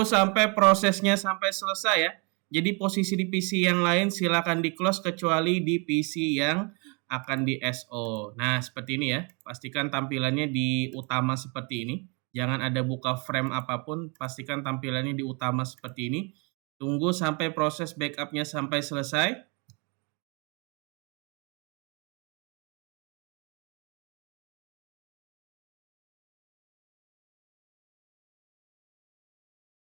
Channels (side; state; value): left; quieter; 32.7 dB